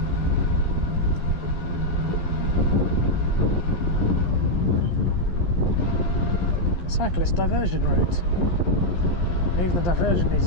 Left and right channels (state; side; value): late; right; 12 ms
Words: Cyclist diversion route. Even the diversion needs